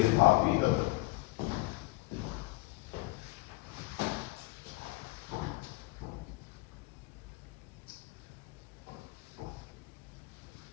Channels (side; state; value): right; quieter; 22.3 dB